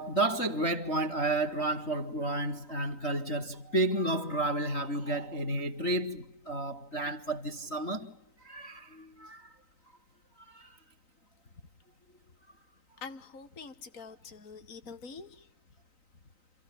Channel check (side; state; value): right; late; 3.9 ms